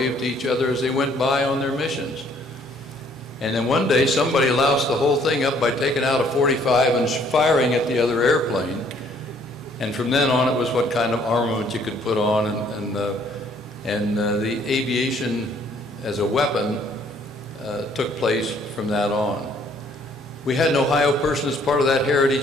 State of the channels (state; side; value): normal; both; correlation 0.62